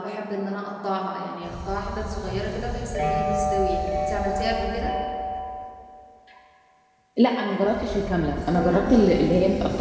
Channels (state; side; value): identical; both; correlation 1.00